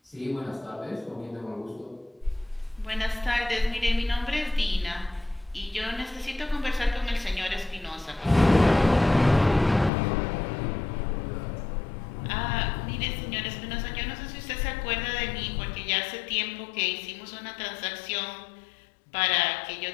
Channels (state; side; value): drops out; right; at 9.9 s